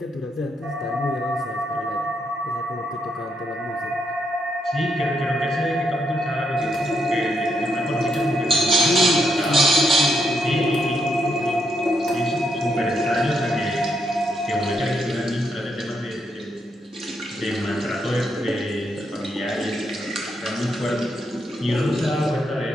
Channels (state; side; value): normal; both; correlation 0.78